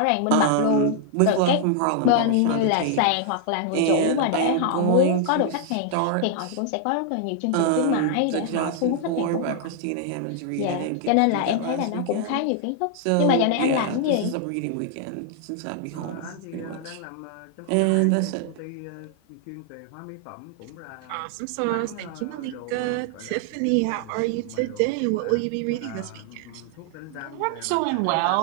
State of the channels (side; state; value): both; different; correlation 0.00